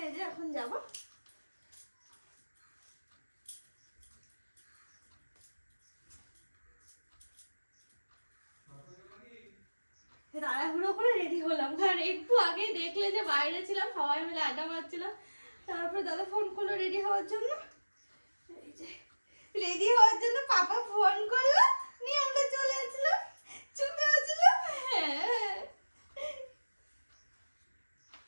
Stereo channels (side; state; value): both; inverted; correlation -1.00